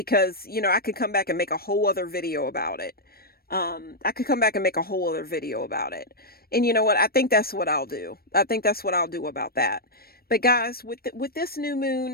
I could come back and make a whole other video about it. And you know what? I think that's what I'll do. About that. But guys, with this new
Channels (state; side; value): late; right; 0.44 ms